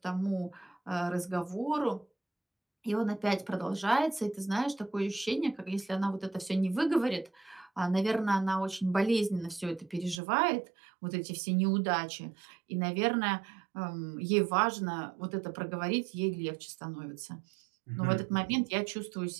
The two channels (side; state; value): left; drops out; at 10.2 s